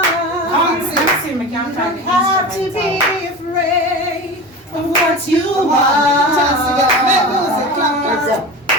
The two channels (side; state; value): both; normal; correlation 0.30